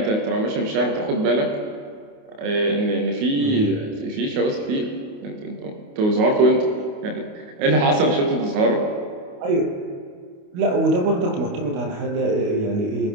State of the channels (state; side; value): late; left; 28 ms